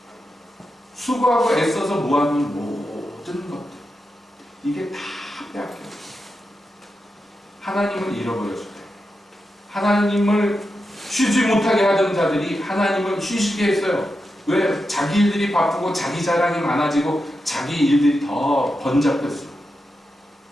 수고하고 애써서 모아둔 모든 것들 이게 다 빼앗겨갔어요. 하나님을 잃어버렸을 때 하나님을 쉬지 못하게 하던 자들이 하나님을 쉬시게 했어요. 왜? 자기 일들이 바쁘고 자기 자랑이 많아지고 자기 일들이 더 번잡했어요.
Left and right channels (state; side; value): normal; both; correlation 0.88